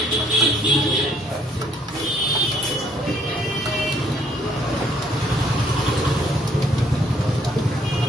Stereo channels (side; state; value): both; normal; correlation 0.65